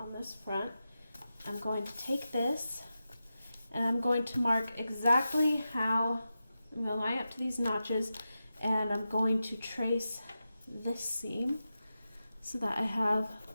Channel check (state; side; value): inverted; both; correlation -0.91